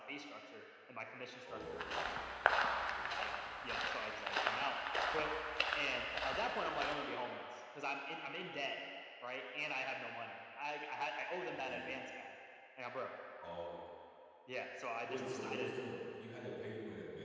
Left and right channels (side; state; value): both; identical; correlation 1.00